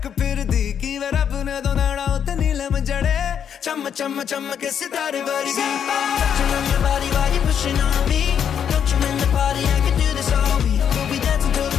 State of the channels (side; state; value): right; quieter; 8.3 dB